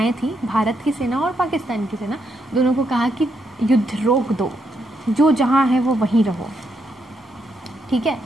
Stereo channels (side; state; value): both; normal; correlation 0.79